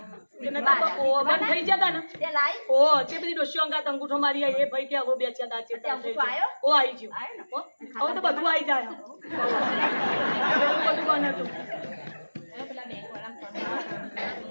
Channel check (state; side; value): inverted; both; correlation -1.00